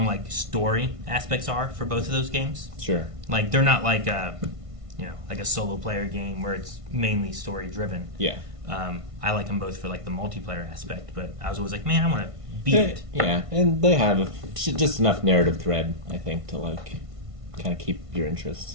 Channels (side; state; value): left; late; 1.5 ms